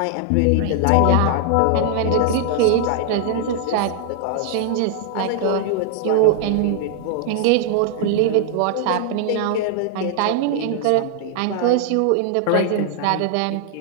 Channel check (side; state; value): both; different; correlation 0.00